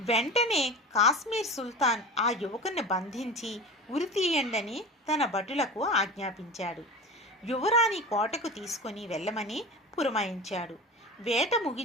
వెంటనే కాశ్మీర్ సుల్తాన్ ఆ యువకుని బంధించి ఉరితీయండని తన భటులకు ఆజ్ఞాపించాడు. యువరాణి కోటకు తీసుకొని వెళ్ళమని పురమాయించాడు. వేట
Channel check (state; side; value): normal; both; correlation 0.32